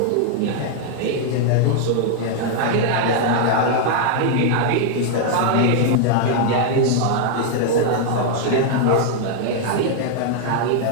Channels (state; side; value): different; both; correlation 0.00